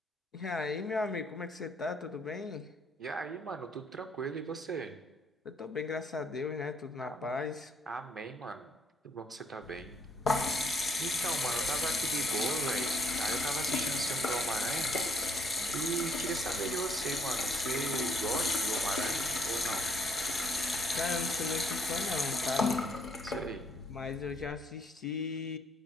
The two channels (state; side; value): normal; both; correlation 0.67